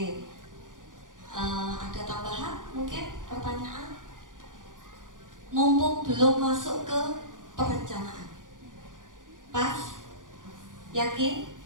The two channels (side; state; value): left; late; 0.88 ms